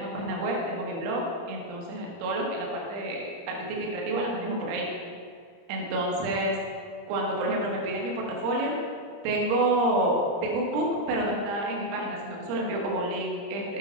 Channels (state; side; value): late; left; 30 ms